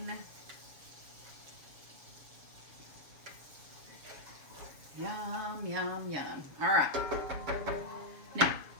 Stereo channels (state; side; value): late; left; 7.1 ms